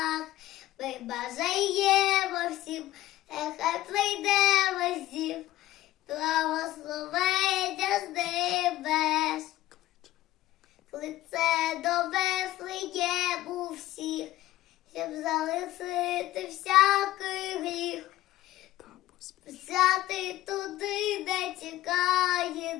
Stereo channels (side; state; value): right; quieter; 15.6 dB